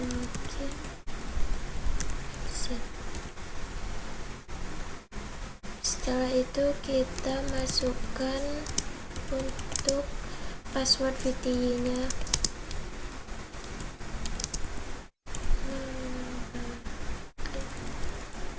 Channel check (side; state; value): both; identical; correlation 1.00